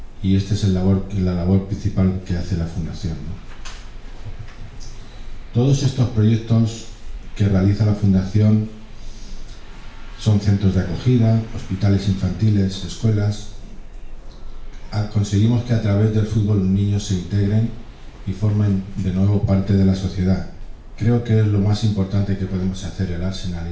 y esta es la labor principal que hace la fundación, ¿no? Todos estos proyectos que realiza la fundación son centros de acogida, hospitales infantiles, escuelas. Conseguimos que a través del fútbol los niños se integren y formen de nuevo parte de la sociedad. Creo que es lo más importante que podemos hacer el Arsenal y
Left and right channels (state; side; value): identical; both; correlation 1.00